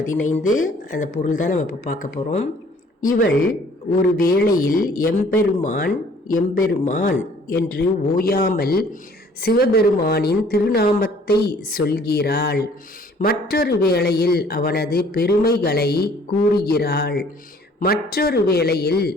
அந்த பொருள் தான் நம்ம இப்போ பார்க்க போகிறோம். இவள் ஒரு வேளையில் எம்பெருமான் எம்பெருமான் என்று ஓயாமல் சிவபெருமானின் திருநாமத்தை சொல்கிறாள். மற்றொரு வேளையில் அவனது பெருமைகளை கூறுகிறாள். மற்றொரு வேளையில்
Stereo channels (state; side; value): normal; both; correlation 0.57